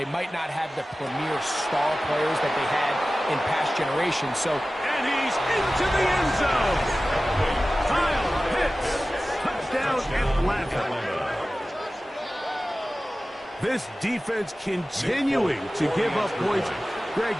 might not have the premier star players that they had in past generations. So, and he's into the end zone. Kyle Pitts, touchdown Atlanta. This defense continuing to give up points. Greg,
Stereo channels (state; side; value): normal; both; correlation 0.96